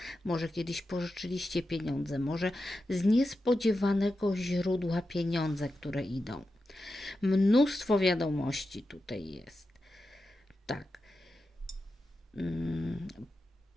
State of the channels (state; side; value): normal; both; correlation 0.90